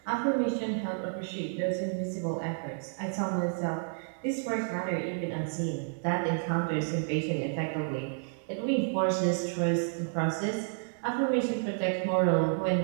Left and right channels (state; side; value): silent; left; 57 dB below the other